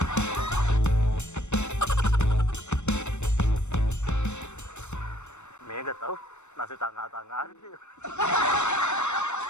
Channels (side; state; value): right; late; 0.83 ms